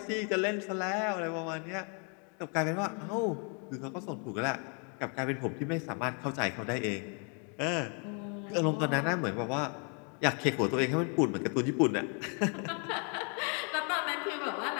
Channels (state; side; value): quieter; right; 38.3 dB